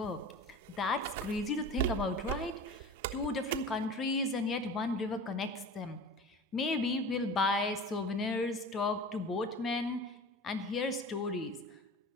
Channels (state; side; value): normal; both; correlation 0.36